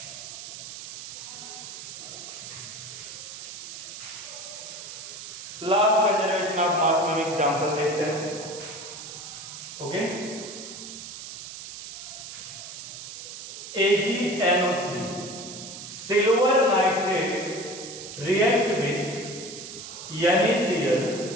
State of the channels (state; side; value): noise; right; hiss, 11 dB below the sound